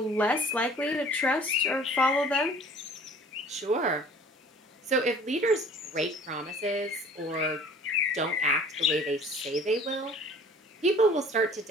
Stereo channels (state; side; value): normal; both; correlation 0.49